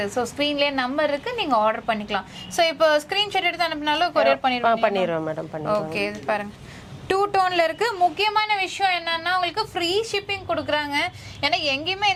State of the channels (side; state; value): both; identical; correlation 1.00